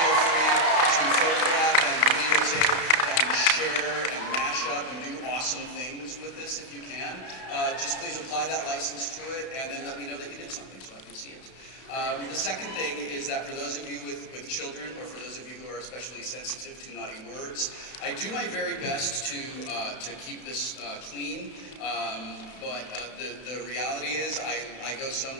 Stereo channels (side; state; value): right; late; 32 ms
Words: free to photograph and videotape and share and mash up and do awesome things with this if you can. Just please apply that license to it and then let me know that you did something so I can see it. The second thing is that for those of you with children, or for those of you who are especially sensitive to naughty words, I do my very best to keep this clean, but the reality is I go